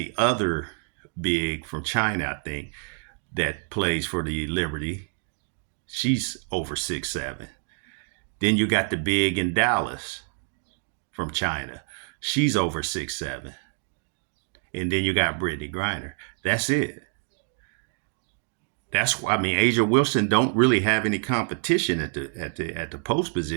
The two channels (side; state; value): left; silent; 56 dB below the other